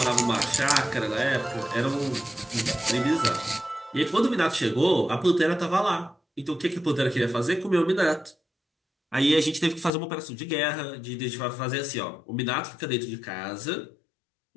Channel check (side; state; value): right; drops out; at 9.9 s